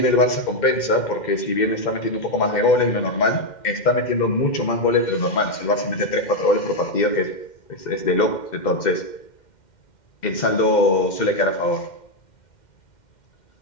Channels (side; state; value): right; late; 2.1 ms